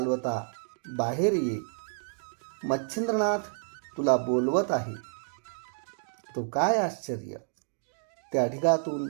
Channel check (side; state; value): left; silent; digital silence